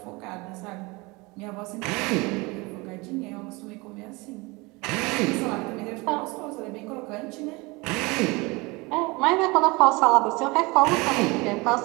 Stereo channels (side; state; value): left; quieter; 25.0 dB